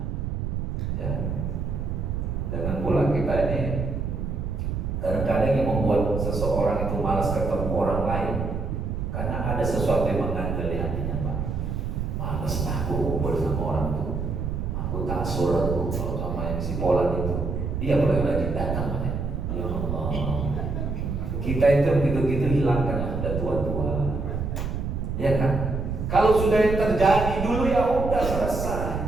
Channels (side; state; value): right; noise; rumble, 2 dB below the sound